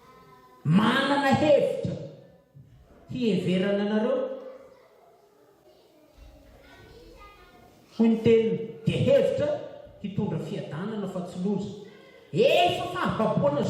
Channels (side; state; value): both; identical; correlation 1.00